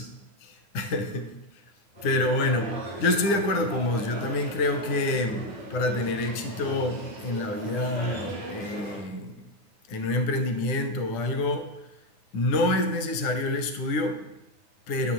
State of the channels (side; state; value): right; late; 9.9 ms